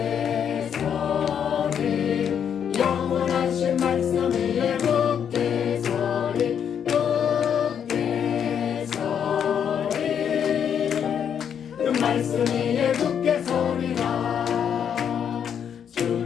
서리 영원하신 말씀 위에 굳게 서리. 굳게 서리 그 말씀 위에 굳게 서리라.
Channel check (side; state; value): right; quieter; 8.2 dB